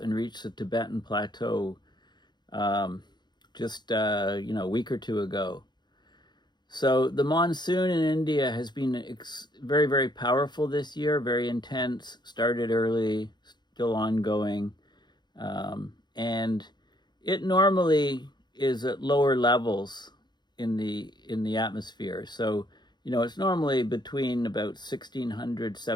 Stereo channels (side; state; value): right; late; 0.21 ms